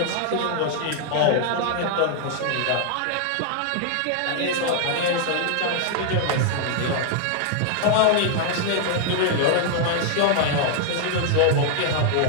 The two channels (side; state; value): both; different; correlation 0.00